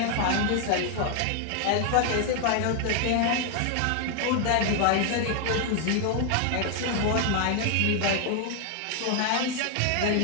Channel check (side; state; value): both; different; correlation 0.00